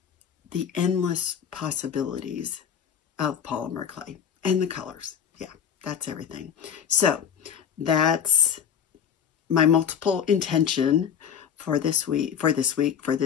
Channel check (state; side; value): quieter; right; 8.2 dB